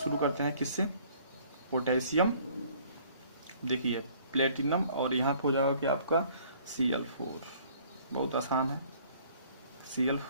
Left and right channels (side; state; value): both; inverted; correlation -0.57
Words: करते हैं किससे, पोटेशियम। देखिए प्लेटिनम और यहाँ पे हो जाएगा कि आपका Cl4। बहुत आसान है,